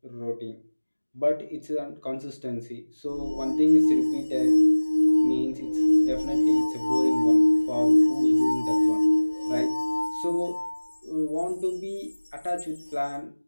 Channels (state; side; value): inverted; both; correlation -1.00